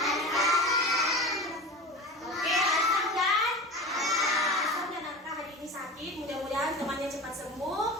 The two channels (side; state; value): both; normal; correlation 0.31